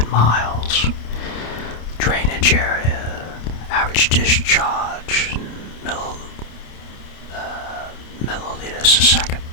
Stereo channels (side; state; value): right; late; 28 ms